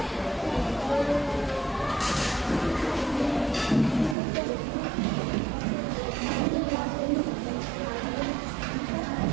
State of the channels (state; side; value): drops out; left; at 4.2 s